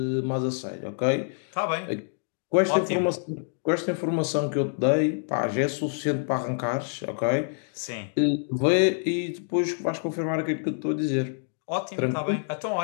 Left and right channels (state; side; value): silent; right; digital silence